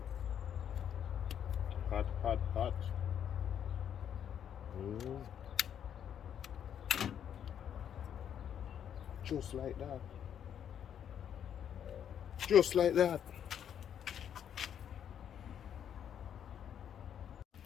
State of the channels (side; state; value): right; quieter; 9.0 dB